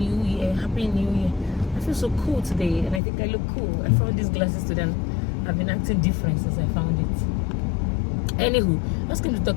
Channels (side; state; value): right; drops out; at 3.0 s